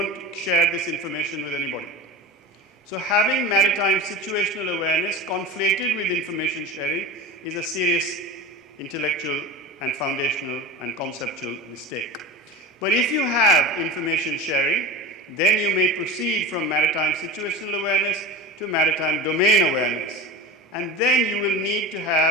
share this information with anybody. So having maritime situational awareness conflated with information sharing is a serious intellectual and foundational and conceptual mistake. But if you have information sharing, then you may proceed from maritime situational awareness to maritime domain awareness. And then you will need to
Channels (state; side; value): normal; both; correlation 0.31